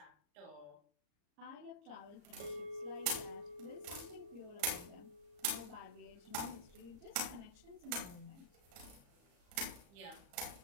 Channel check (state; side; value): late; left; 35 ms